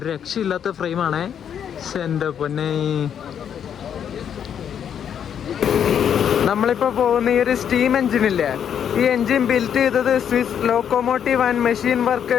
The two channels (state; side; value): quieter; right; 8.6 dB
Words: രക്ഷയില്ലാത്ത ഫ്രെയിമാണേ. എൻ്റെ പൊന്നെ. നമ്മളിപ്പോൾ പോകുന്ന ഈ ഒരു സ്റ്റീം എഞ്ചിനില്ലേ, ഈ എഞ്ചിൻ ബിൽറ്റ് ചെയ്തത് Swiss locomotive and machine